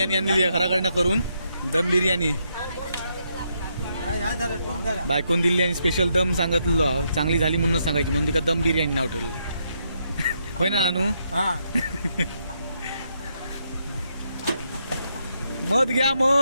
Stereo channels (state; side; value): inverted; both; correlation -0.78